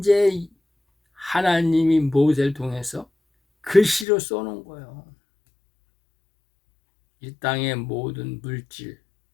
하나님이 모세를 통해서 글씨로 써놓은 거예요. 이 땅의 모든 물질,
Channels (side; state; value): right; drops out; at 4.0 s